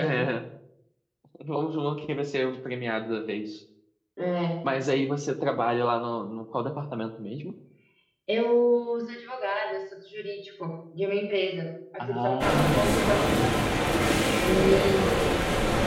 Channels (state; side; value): identical; both; correlation 1.00